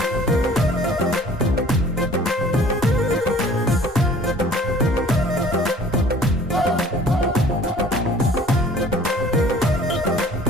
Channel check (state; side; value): normal; both; correlation 0.51